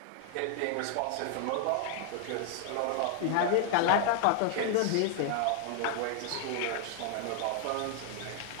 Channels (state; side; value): different; both; correlation 0.00